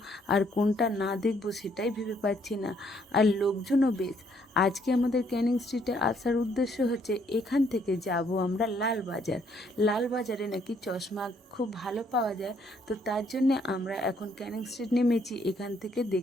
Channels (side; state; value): both; normal; correlation 0.68